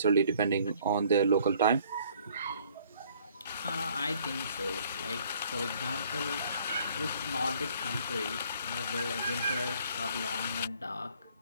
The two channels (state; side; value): inverted; both; correlation -0.59